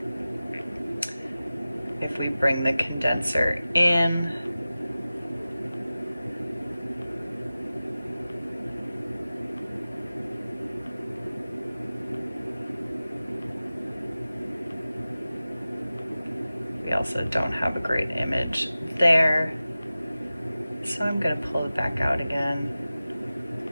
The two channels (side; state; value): both; inverted; correlation -0.96